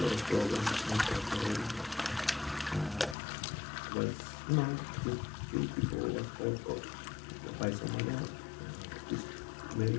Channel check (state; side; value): drops out; right; at 3.2 s